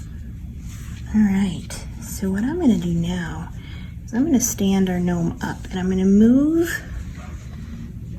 All right, so what I'm going to do now is I'm going to stand our gnome up, and I'm going to move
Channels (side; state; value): both; identical; correlation 1.00